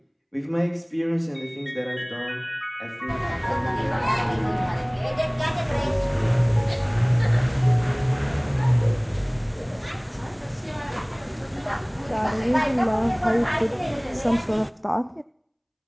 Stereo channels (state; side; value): identical; both; correlation 1.00